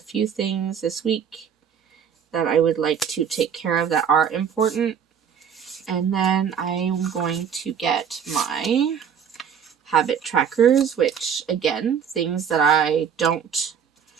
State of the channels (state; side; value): quieter; left; 7.7 dB